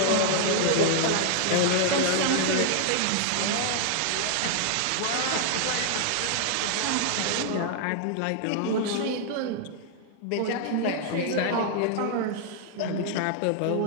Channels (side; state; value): both; different; correlation 0.00